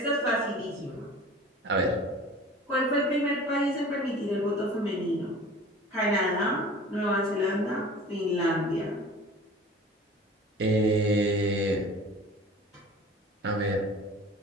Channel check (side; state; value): both; normal; correlation 0.42